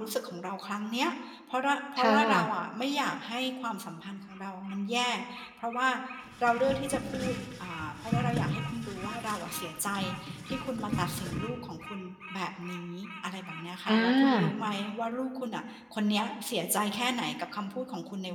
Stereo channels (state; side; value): identical; both; correlation 1.00